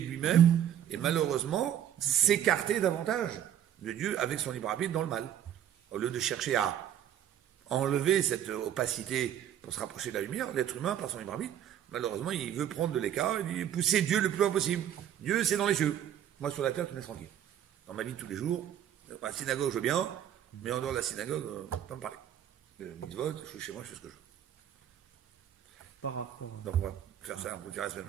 lui-même, et malheureusement, s'écarter davantage de Dieu avec son libre arbitre dans le mal. Au lieu de chercher à enlever cette opacité pour se rapprocher de la lumière, l'être humain, par son libre arbitre, malheureusement, il veut prendre de l'écart, il veut pousser Dieu le plus loin possible. Dieu, c'est dans les cieux. Moi, sur la terre, tu me laisses tranquille. Dans ma vie de tous les jours, à la synagogue, je veux bien, mais en dehors de la synagogue, pas me parler. Mitzvot, je suis chez moi, je fais ce que je veux. Par rapport, Donc on va faire ça, on vous dira la semaine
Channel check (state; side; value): quieter; left; 10.4 dB